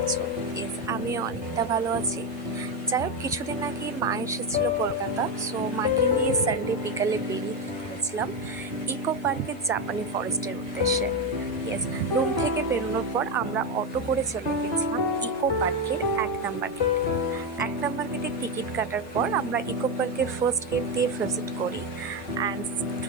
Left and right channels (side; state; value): right; noise; hiss, 28 dB below the sound